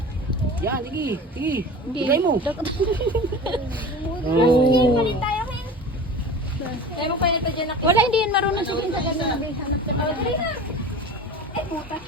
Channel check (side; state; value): both; normal; correlation 0.36